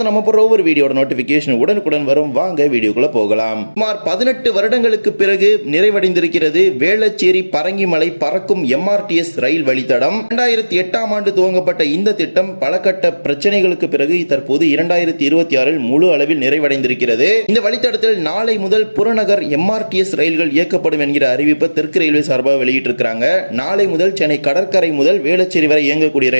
நம்ம போற ஒவ்வொரு வீடியோட நோட்டிபிகேஷன் உடனுக்குடன் வரும். வாங்க வீடியோக்குள்ள போகலாம். சுமார் 18 வருடங்களுக்கு பிறகு நிறைவடைந்திருக்கிறது வேளச்சேரி பரங்கிமலை பறக்கும் MRTS ரயில் வழித்தடம். 2008ஆம் ஆண்டு துவங்கப்பட்ட இந்த திட்டம் பல கட்ட பிரச்சனைகளுக்கு பிறகு தற்போது 2026இல் முழு அளவில் நிறைவடைந்திருக்கிறது. இந்த வழித்தடத்தில் நாளை முதல் புறநகர் MRTS ரயில்கள் இயக்கப்படும் என்கிற அறிவிப்பை தெற்கு ரயில்வே சார்பாக வெளியிட்டிருக்கிறாங்க. நாளை முதல் சென்னை கடற்கரை முதல் வேளச்சேரி வரை இயங்கக்கூடிய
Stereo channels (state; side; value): inverted; both; correlation -1.00